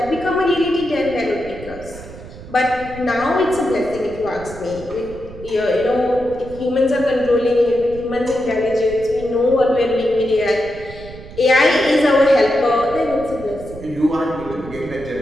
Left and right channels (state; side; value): noise; right; rumble, 15 dB below the sound